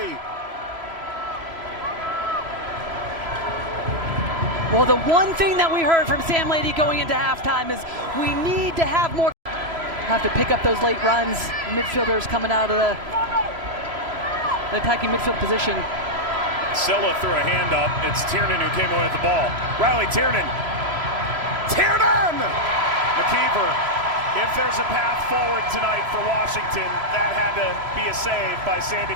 Well, the one thing that we heard from Sam Lady going into halftime is we need to have more. Have to pick up those late runs. Midfielders coming out of the attacking midfield position. Silla threw a hand up. It's Tiernan who came away with the ball. Riley Tiernan. Tiernan! McKeever. If there's a path forward tonight for Washington, that had to be a save by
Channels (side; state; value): left; late; 1.7 ms